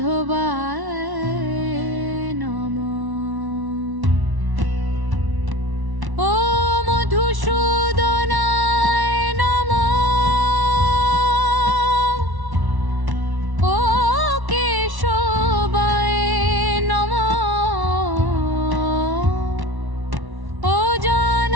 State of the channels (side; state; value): left; late; 1.1 ms